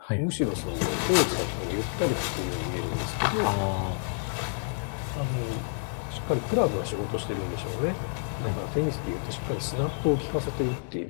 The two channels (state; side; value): silent; right; digital silence